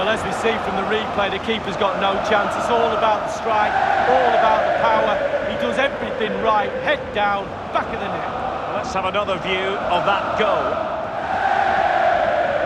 as we see from the replay, the keeper's got no chance. It's all about the strike, all about the power. He does everything right, head down, back of the net. Let's have another view of that goal.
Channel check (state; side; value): identical; both; correlation 1.00